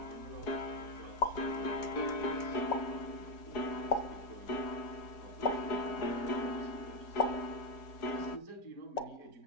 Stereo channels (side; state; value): right; late; 4.8 ms